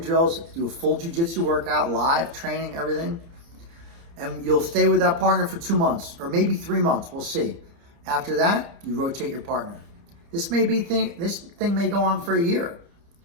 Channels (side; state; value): left; late; 30 ms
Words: do a full jiu-jitsu workout, live training, everything. And you'll stay with that partner for 2 months or maybe 3 months. We'll see. After that, you rotate your partner. This thing may go on for a year.